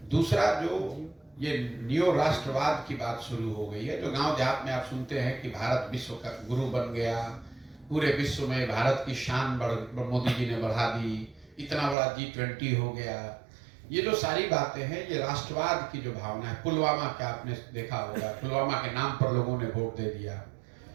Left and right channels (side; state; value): left; drops out; at 12.0 s